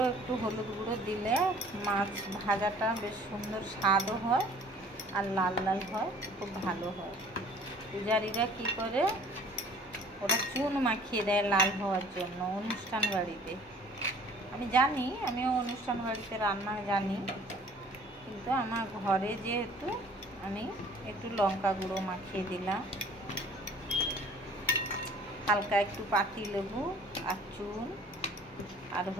একটু হলুদ গুঁড়ো দিলে মাছ ভাজাটা বেশ সুন্দর স্বাদও হয় আর লাল লাল হয়, খুব ভালো হয়। পূজারীরা কী করে, ওরা চুন মাখিয়ে দেয় লাল হওয়ার জন্য অনুষ্ঠান বাড়িতে। আমি জানি, আমিও অনুষ্ঠান বাড়িতে রান্না জানি, কিন্তু আমার ঘরে যেহেতু আমি একটু লঙ্কা গুঁড়ো মাখিয়ে দিলাম, হালকা একটু পাতিলেবু আর চুন আর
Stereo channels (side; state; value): both; normal; correlation 0.51